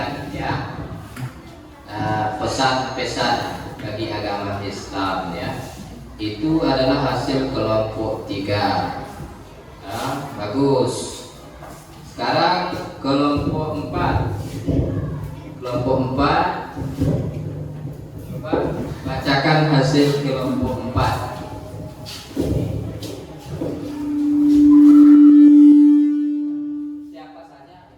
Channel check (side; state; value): both; identical; correlation 1.00